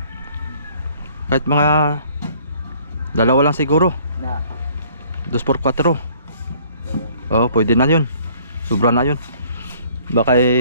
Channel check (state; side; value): inverted; both; correlation -0.58